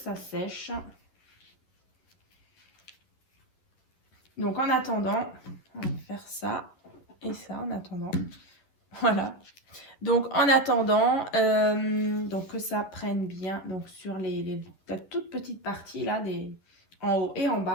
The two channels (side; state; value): right; late; 11 ms